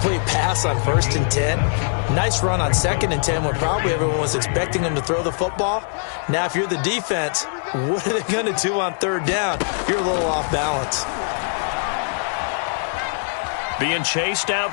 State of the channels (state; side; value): silent; right; digital silence